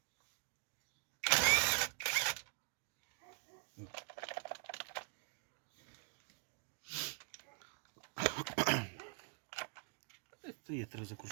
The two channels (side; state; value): left; quieter; 38.9 dB